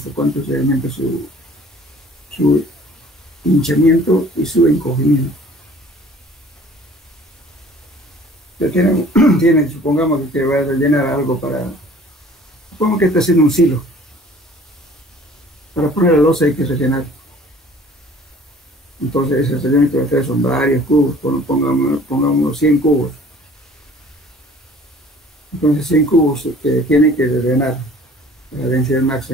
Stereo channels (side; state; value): both; normal; correlation 0.51